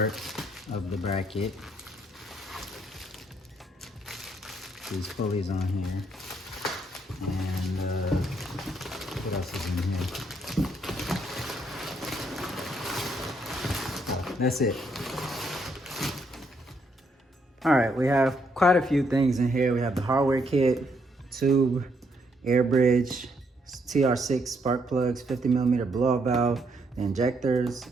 of the bracket. These pulleys on here. And what else is in here? So that's it. All right, we have quite a few things in here. We have the hardware kit, tube, air bridge, TR6 spark plugs, 50mm blow-off valve, the injectors,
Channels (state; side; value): normal; both; correlation 0.73